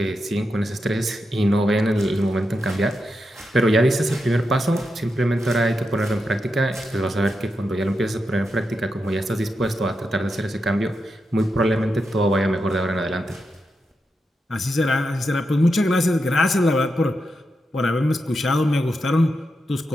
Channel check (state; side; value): normal; both; correlation 0.86